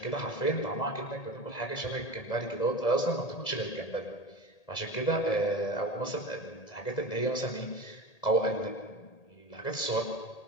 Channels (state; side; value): late; right; 1.7 ms